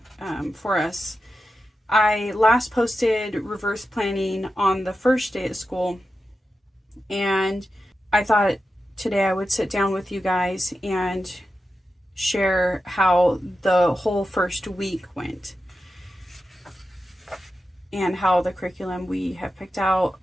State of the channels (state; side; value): normal; both; correlation 0.91